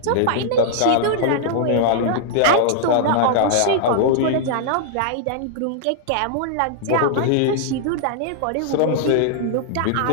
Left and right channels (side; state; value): both; different; correlation -0.01